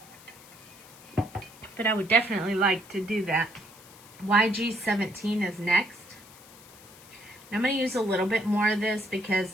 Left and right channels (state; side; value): noise; left; hiss, 21 dB below the sound